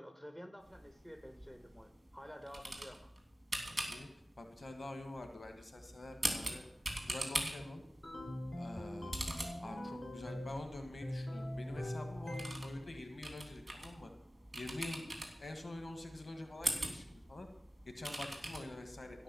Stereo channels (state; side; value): normal; both; correlation 0.95